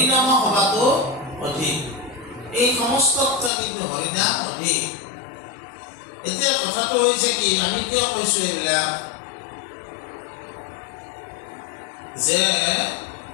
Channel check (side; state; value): right; drops out; at 3.5 s